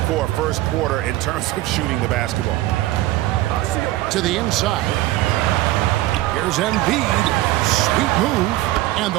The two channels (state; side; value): quieter; left; 16.9 dB